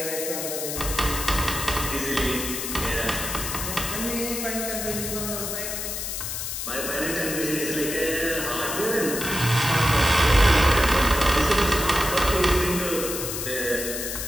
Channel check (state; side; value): noise; left; hiss, 4 dB below the sound